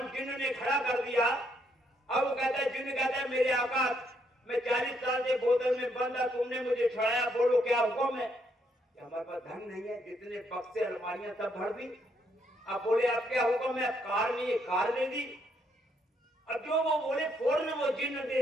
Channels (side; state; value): both; normal; correlation 0.73